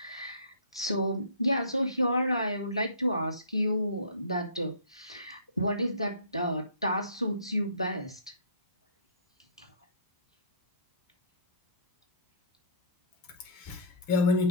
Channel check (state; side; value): inverted; both; correlation -0.43